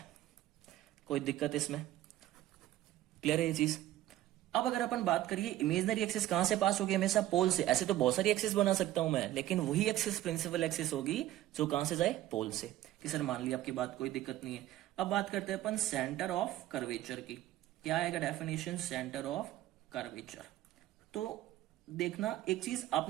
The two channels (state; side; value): quieter; left; 14.2 dB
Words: कोई दिक्कत इसमें, क्लियर है ये चीज। अब अगर अपन बात करिए इमेजिनरी एक्सिस कहां से पास होगी, हमेशा पोल से। ऐसे तो बहुत सारी एक्सिस बना सकता हूं मैं, लेकिन वही एक्सिस प्रिंसिपल एक्सिस होगी जो कहां से जाए, पोल से। कि सर मान लिया आपकी बात, कोई दिक्कत नहीं है। अब बात करते हैं अपन सेंटर ऑफ कर्वेचर की। क्या आएगा डेफिनेशन सेंटर ऑफ कर्वेचर? तो देखना एक चीज,